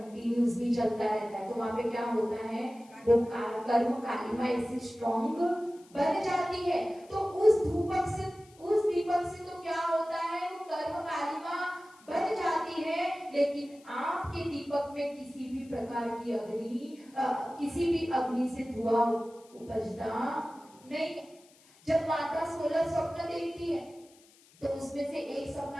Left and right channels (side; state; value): left; noise; hiss, 27 dB below the sound